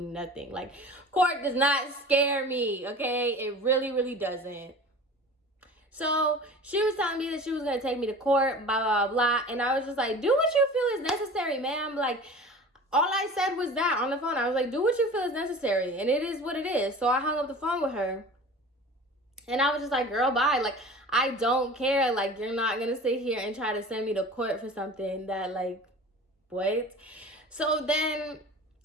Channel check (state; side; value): normal; both; correlation 0.39